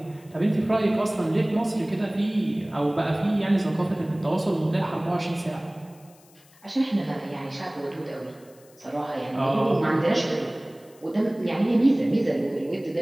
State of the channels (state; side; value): noise; left; hiss, 28 dB below the sound